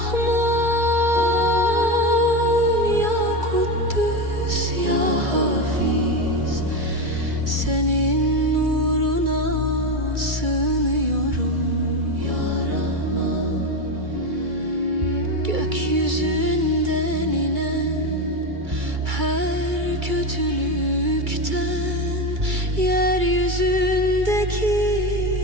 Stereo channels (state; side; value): late; left; 2.3 ms